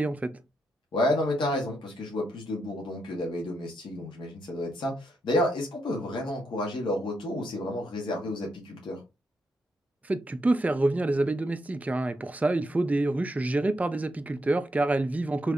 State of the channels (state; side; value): normal; both; correlation 0.81